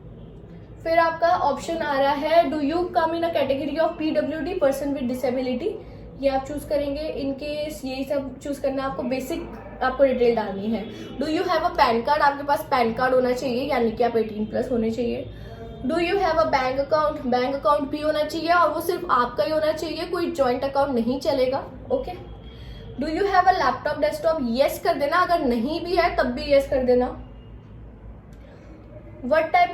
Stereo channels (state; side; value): identical; both; correlation 1.00